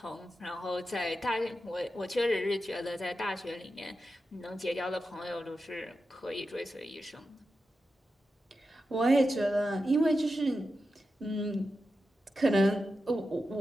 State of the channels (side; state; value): both; normal; correlation 0.90